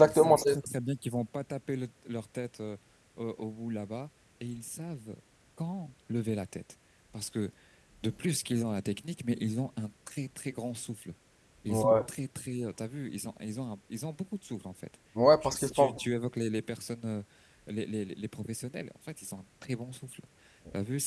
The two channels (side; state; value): both; identical; correlation 1.00